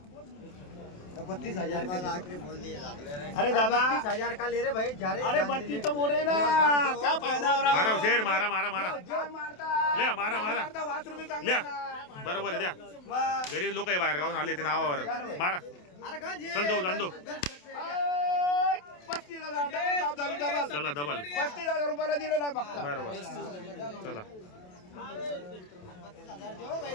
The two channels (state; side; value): late; right; 28 ms